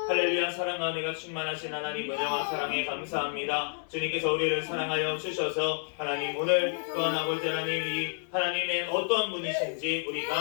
할렐루야. 사랑과 은혜가 충만하신 하나님, 은혜와 사랑에 감사합니다. 주님께서 우리를 사랑하여 주셔서 하나님, 오늘 또한 아버지 하나님, 이 하나님의 어떠한 분이신지 우리가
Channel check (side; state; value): right; silent; digital silence